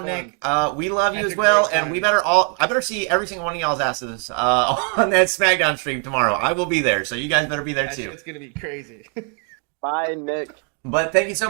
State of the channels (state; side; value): quieter; left; 39.6 dB